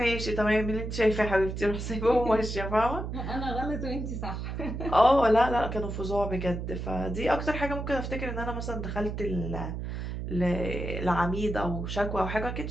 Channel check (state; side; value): noise; right; hum, 5 dB below the sound